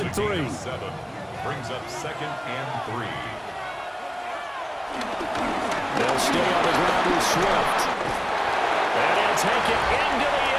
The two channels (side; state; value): both; identical; correlation 1.00